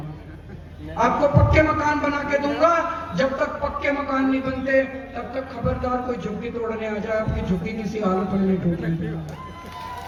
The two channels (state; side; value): identical; both; correlation 1.00